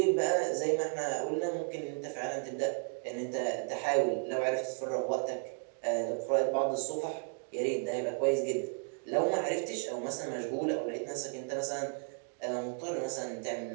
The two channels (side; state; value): left; silent; 55 dB below the other